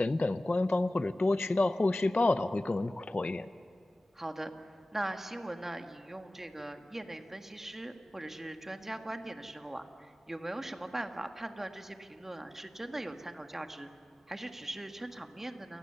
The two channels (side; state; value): both; normal; correlation 0.97